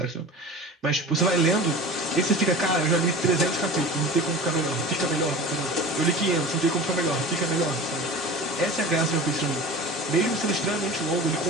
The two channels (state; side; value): normal; both; correlation 0.35